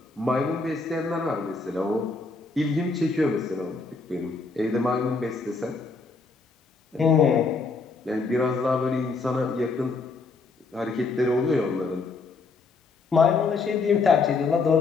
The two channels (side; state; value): right; quieter; 4.2 dB